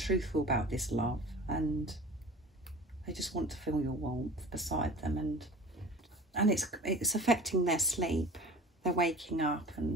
about this love and they just want to feel your warmth beside them, and it's affecting their sleep. They're waking up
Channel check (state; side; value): normal; both; correlation 0.41